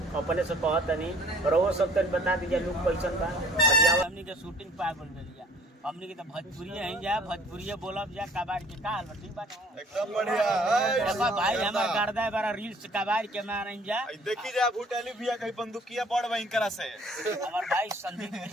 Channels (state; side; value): normal; both; correlation 0.54